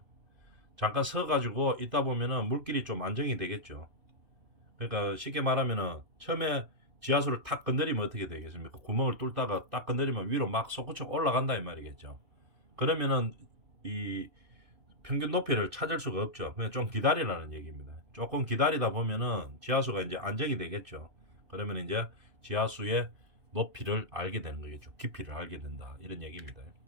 잠깐 서가지고 있다 보면은 물길이 좀 안정이 되겠죠. 그러니까 쉽게 말하면은 처음에 지하수를 탁 건드리면 어떻게 되겠습니까? 구멍을 뚫다가 딱 건드리면 위로 막 솟구쳐 올라간다 이 말이겠죠. 그러면은 이 평균 높이를 찾을 수가 없죠. 그냥 좀 기다리라는 얘기입니다. 조금 기다리다 보면은 지하수가 이제 안정이 되겠죠. 그러면 이제 지하수의 높이를 알게 되는 거겠죠. 깊이를 알게 된다. 이런 얘기입니다.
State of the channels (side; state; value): left; late; 2.6 ms